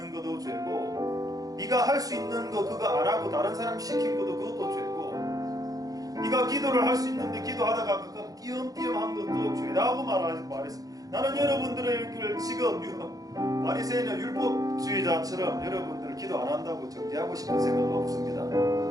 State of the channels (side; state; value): left; late; 0.18 ms